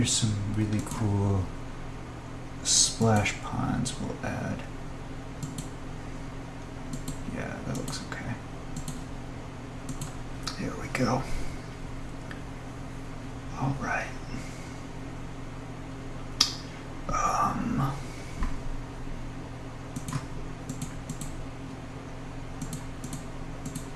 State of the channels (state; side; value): identical; both; correlation 1.00